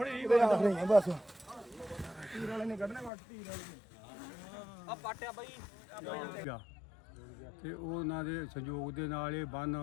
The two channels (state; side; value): drops out; right; at 3.1 s